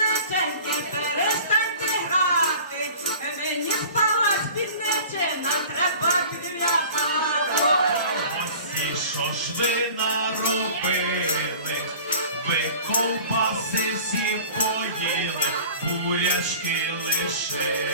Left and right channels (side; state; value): both; inverted; correlation -0.42